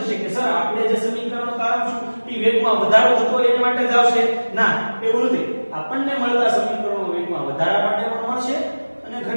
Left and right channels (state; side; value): inverted; both; correlation -1.00